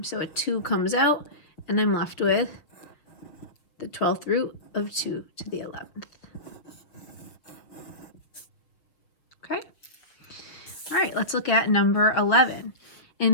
so a 2 comes out, and I'm left with the 12th root of 2 to the 11th. Okay. All right, let's look at number 11.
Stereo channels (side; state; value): right; late; 6.5 ms